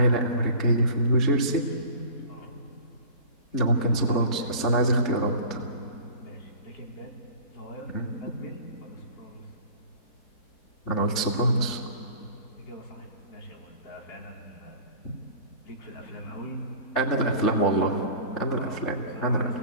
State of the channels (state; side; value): late; right; 3.5 ms